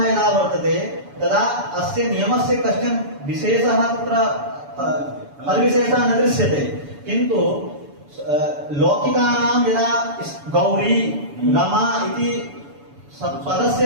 यदा वर्तते तदा अस्य नियमस्य कश्चन विशेषः तत्र फलविशेषः न दृश्यते किन्तु लौकिकानां यदा गौरी रमा इति पदस्य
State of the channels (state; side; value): late; left; 7.0 ms